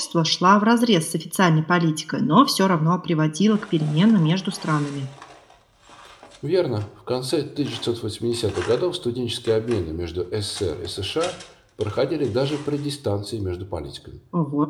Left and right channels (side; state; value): both; identical; correlation 1.00